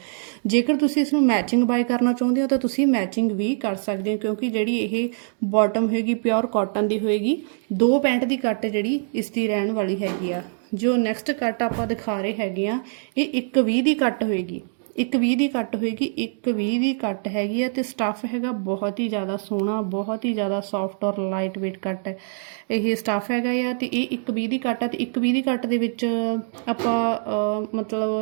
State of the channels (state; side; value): silent; left; digital silence